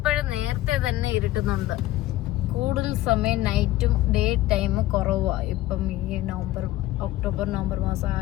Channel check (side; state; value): right; quieter; 15.8 dB